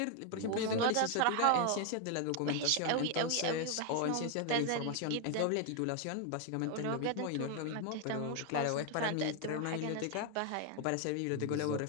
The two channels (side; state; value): both; different; correlation 0.01